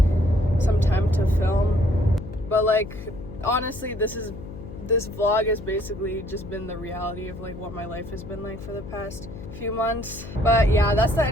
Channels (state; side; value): noise; left; hum, 13 dB below the sound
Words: some time to film. But like honestly, this vlog has basically just been the reality of like what my life has been like for the past few months. But yeah, that's the